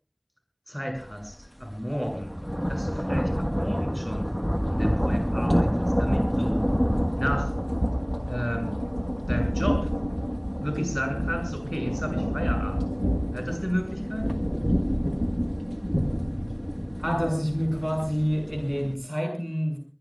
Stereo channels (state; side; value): identical; both; correlation 1.00